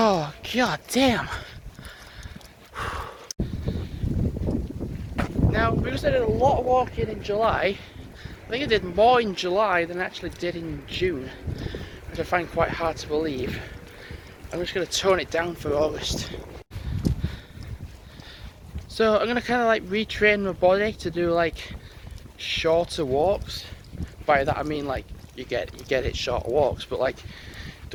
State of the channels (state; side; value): identical; both; correlation 1.00